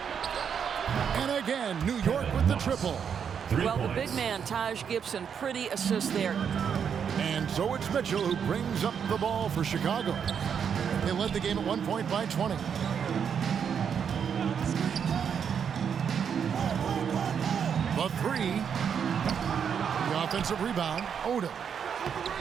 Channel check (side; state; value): left; quieter; 7.4 dB